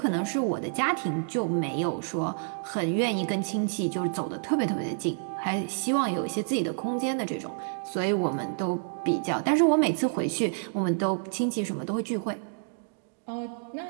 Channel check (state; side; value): silent; left; digital silence